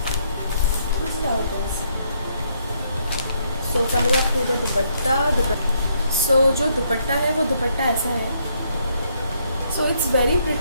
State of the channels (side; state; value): both; inverted; correlation -0.72